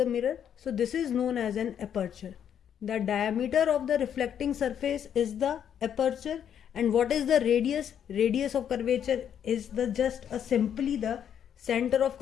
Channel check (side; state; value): right; quieter; 9.0 dB